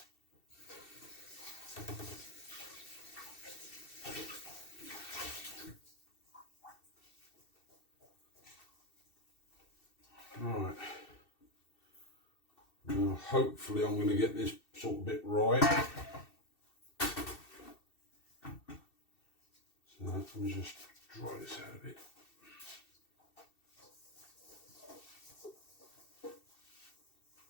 Right, now hopefully I'm going to get this sort of bit right. So let me just dry this out a bit.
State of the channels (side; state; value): right; late; 2.7 ms